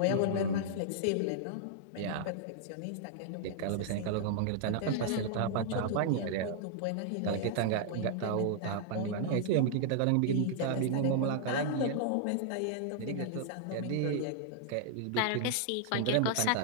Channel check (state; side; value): different; both; correlation -0.01